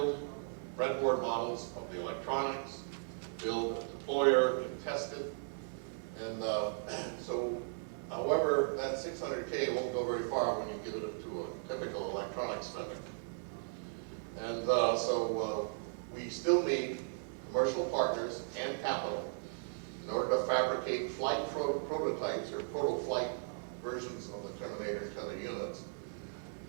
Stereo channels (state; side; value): silent; left; 53 dB below the other